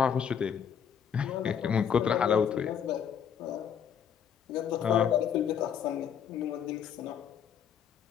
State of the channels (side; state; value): right; quieter; 8.0 dB